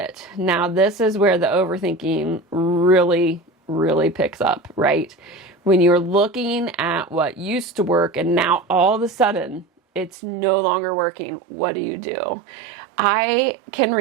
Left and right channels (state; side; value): drops out; left; at 10.1 s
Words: Now, this is where the overthinking really, really picks up, right? When you're looking at what used to work and now all of a sudden it's no longer working, what do? I can